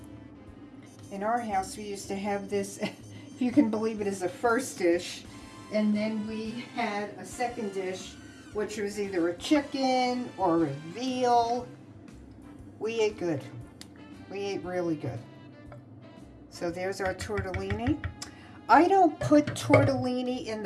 In our house, we used to have this, if you can believe it, as a first dish, and then we had a second dish, which was either a chicken or a veal. We ate good. We ate really good. So there's our tortellini. I don't put tortellini in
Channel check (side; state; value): both; identical; correlation 1.00